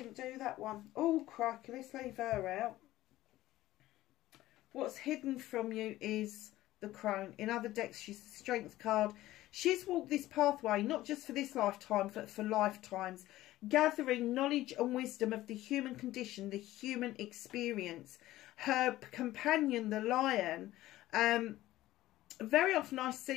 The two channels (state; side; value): quieter; right; 15.7 dB